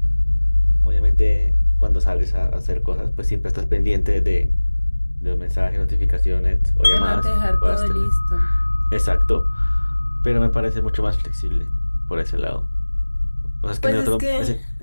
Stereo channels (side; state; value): both; inverted; correlation -1.00